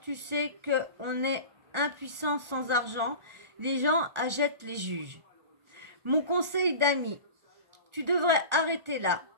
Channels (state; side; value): late; left; 1.4 ms